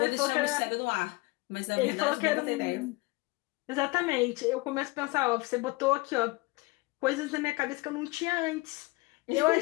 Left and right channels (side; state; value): right; quieter; 23.6 dB